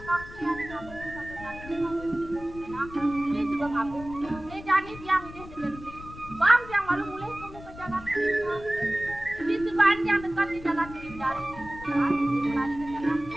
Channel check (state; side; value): noise; left; rumble, 16 dB below the sound